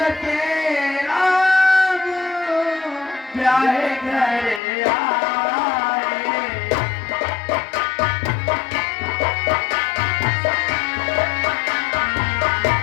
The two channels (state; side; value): drops out; right; at 4.6 s